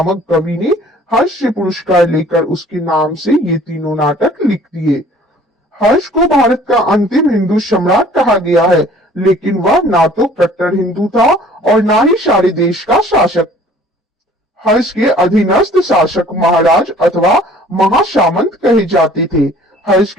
कवि ने हर्ष से पुरस्कार लेकर उसके नाम से ये तीनों नाटक लिख दिए। हर्ष को भारत का अंतिम हिंदू सम्राट कहा गया है, लेकिन वह ना तो कट्टर हिंदू था और ना ही सारे देश का शासक। हर्ष के अधीनस्थ शासक महाराज अथवा महासामंत कहे जाते थे। हर्ष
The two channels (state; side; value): normal; both; correlation 0.53